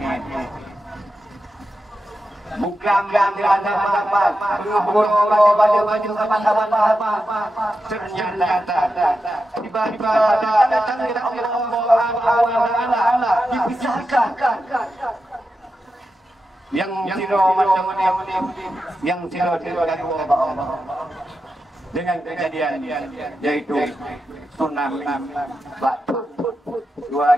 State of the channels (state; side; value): normal; both; correlation 0.89